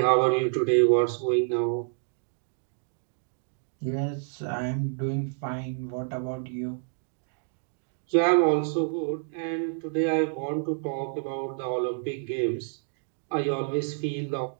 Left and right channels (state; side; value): silent; left; digital silence